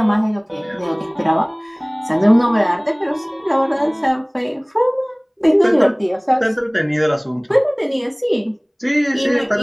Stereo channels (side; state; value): both; identical; correlation 1.00